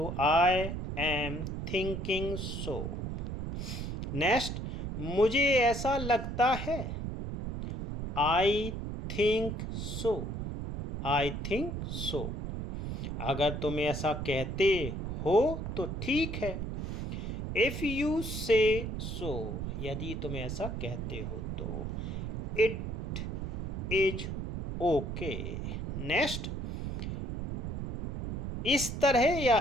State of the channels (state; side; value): noise; right; rumble, 4 dB below the sound